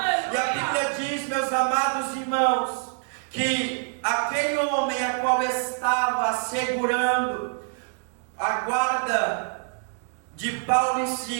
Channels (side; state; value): left; silent; 61 dB below the other